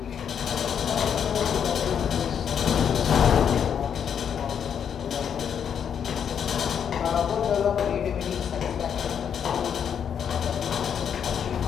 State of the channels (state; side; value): quieter; right; 8.0 dB